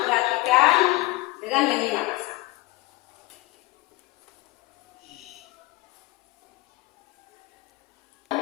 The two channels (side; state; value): right; quieter; 20.3 dB